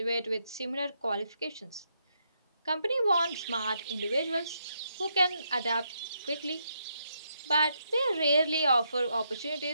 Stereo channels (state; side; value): inverted; both; correlation -0.78